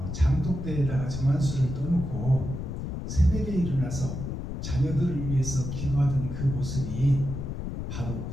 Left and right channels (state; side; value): noise; left; rumble, 5 dB below the sound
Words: 장독대에다가 정한수를 떠놓고 새벽에 일어나서 자녀들을 위해서 기도하던 그 모습이 바로